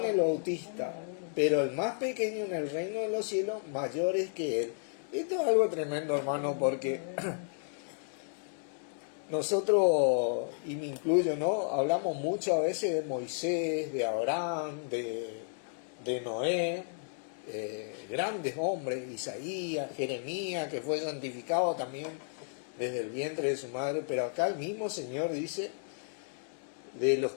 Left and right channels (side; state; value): right; silent; digital silence